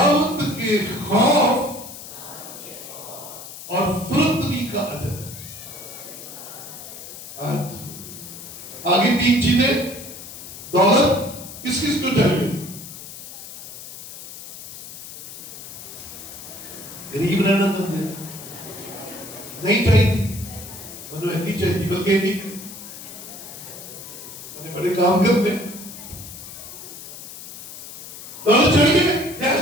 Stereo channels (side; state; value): left; noise; hiss, 13 dB below the sound